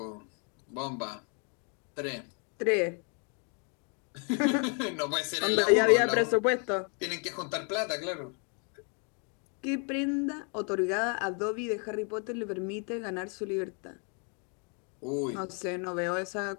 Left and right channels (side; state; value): right; quieter; 38.2 dB